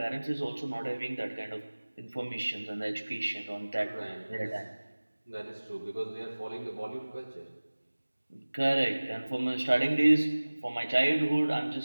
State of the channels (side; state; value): both; inverted; correlation -1.00